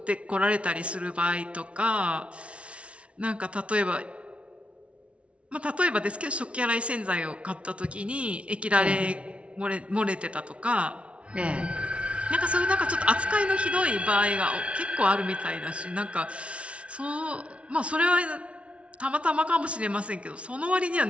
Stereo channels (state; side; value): late; left; 0.061 ms